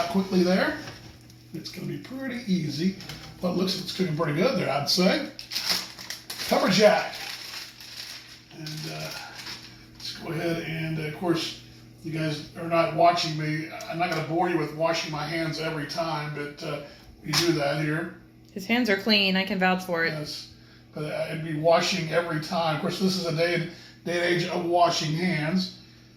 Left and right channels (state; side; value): identical; both; correlation 1.00